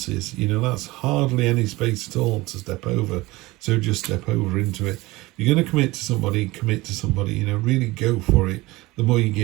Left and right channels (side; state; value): left; quieter; 20.7 dB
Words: You know, that's hardly any space at all to step over. So just step over into it. If you're going to commit to somebody, you know, really go for it. The more you